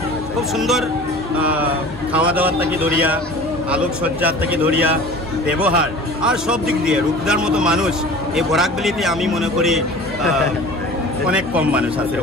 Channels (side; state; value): both; normal; correlation 0.41